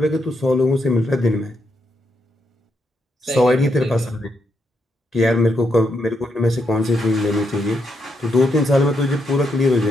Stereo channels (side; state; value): both; normal; correlation 0.80